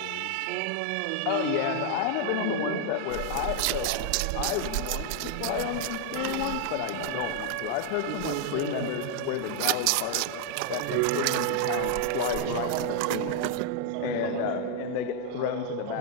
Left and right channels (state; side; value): different; both; correlation 0.00